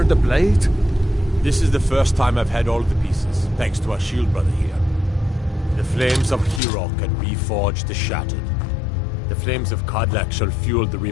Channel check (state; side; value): drops out; right; at 6.6 s